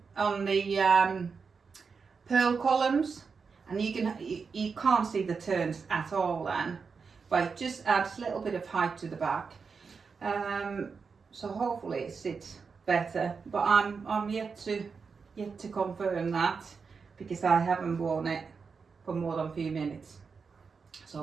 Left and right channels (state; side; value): quieter; left; 5.3 dB